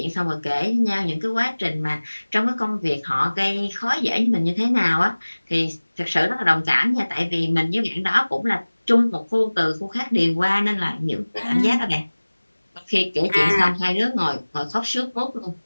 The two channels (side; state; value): both; inverted; correlation -1.00